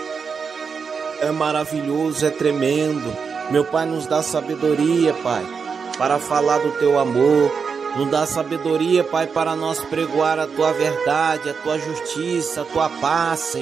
é maravilhoso, é tremendo. Meu Pai, nos dá sabedoria, Pai, para falar do Teu amor. Nos dá sabedoria, Pai, para nós pregoar a Tua verdade, a Tua justiça, a Tua paz,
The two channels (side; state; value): left; quieter; 5.7 dB